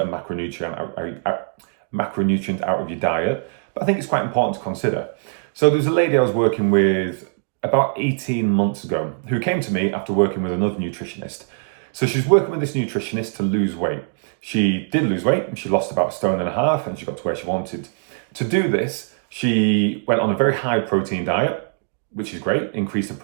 macronutrient out of your diet, but I think it's quite important to consider. So there's a lady I was working with about 18 months ago who came to me after working with another nutritionist. So she's working with this nutritionist to lose weight. She did lose weight and she lost about 1.5 stone and she got to where she wanted. To do this, she went on a very high protein diet, which is great, increased the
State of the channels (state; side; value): silent; left; digital silence